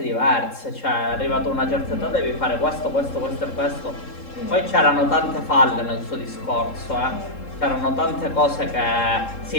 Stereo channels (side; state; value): right; late; 3.7 ms